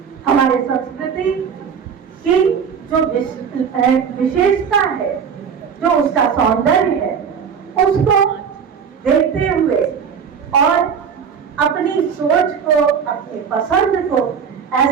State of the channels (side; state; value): left; quieter; 6.9 dB